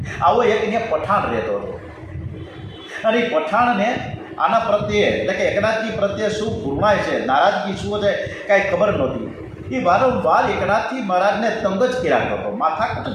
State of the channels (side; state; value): both; identical; correlation 1.00